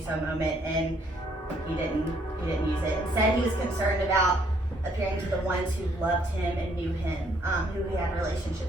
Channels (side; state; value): both; normal; correlation 0.67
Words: so moment, and he didn't use it. Instead, he was concerned about appearing to the ones who loved him and knew him, who he had